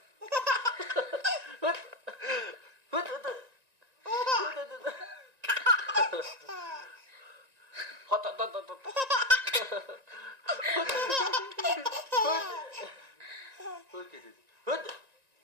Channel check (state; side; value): late; left; 1.9 ms